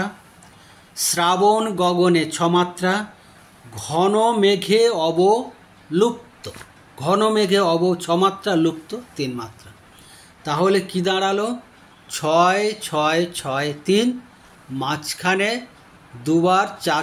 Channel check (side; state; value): both; identical; correlation 1.00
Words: শ্রাবণ গগনে ছমাত্রা, ঘন মেঘে অবলুপ্ত। ঘন মেঘে ছমাত্রা, লুপ্ত 3 মাত্রা। তাহলে কি দাঁড়ালো? 6 6 6 3, মাঝখানে দুবার